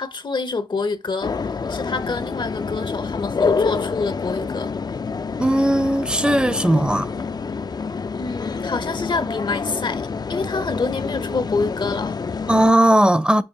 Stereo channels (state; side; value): normal; both; correlation 0.81